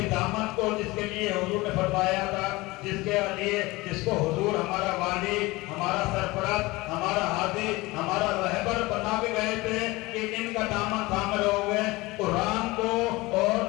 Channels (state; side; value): quieter; right; 21.6 dB